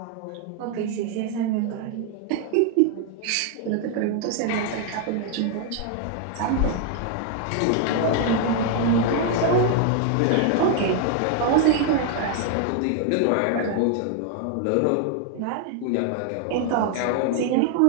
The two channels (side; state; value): both; different; correlation 0.00